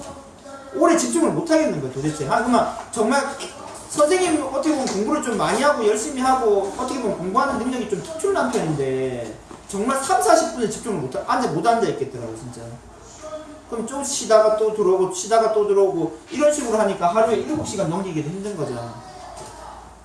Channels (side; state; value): both; identical; correlation 1.00